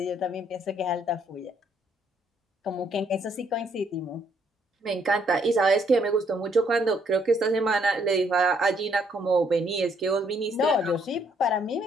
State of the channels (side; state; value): both; normal; correlation 0.69